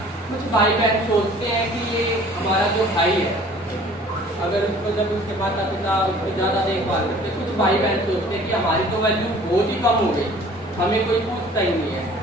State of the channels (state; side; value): normal; both; correlation 0.50